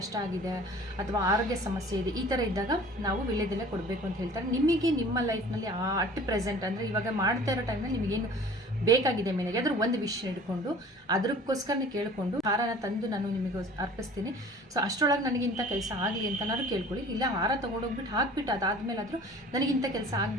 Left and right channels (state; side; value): normal; both; correlation 0.46